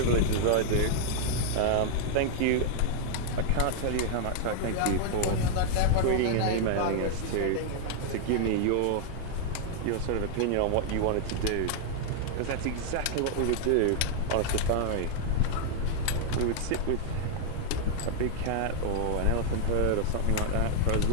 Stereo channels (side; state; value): both; different; correlation 0.00